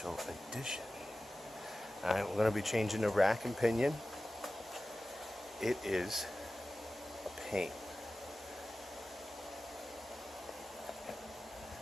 edition. Alright, we're going to be changing the rack and pinion. It is a pain.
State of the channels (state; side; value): normal; both; correlation 0.95